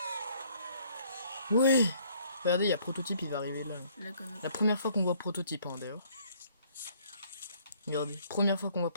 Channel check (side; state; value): both; inverted; correlation -0.62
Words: Oui. Regardez, il y a Prototype, il va arriver là. Je la connais. La première fois qu'on voit Prototype, hein, d'ailleurs. Regardez, première fois qu'on voit